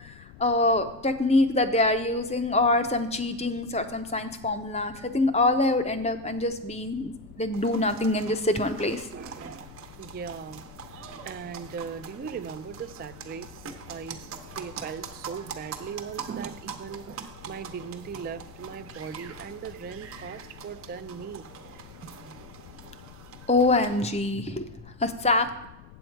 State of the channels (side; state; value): left; noise; rumble, 19 dB below the sound